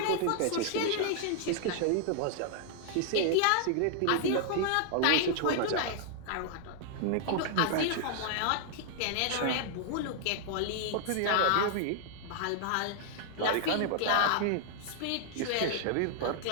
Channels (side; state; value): both; different; correlation 0.00